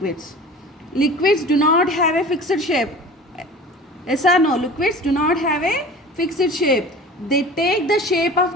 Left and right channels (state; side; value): normal; both; correlation 0.39